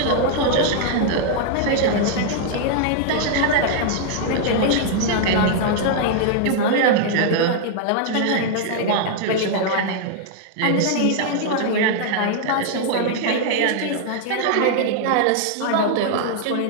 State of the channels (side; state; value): both; different; correlation 0.00